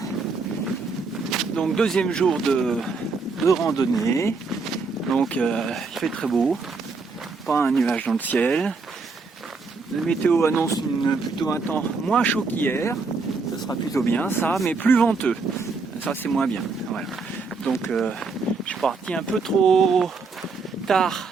donc deuxième jour de randonnée, donc il fait très beau, pas un nuage dans le ciel, la météo annonce plutôt un temps moins chaud qu'hier, ça sera plutôt bien ça, mais plus venteux, ça c'est moins bien, voilà. Donc je suis parti un peu trop tard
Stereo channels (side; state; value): left; quieter; 4.3 dB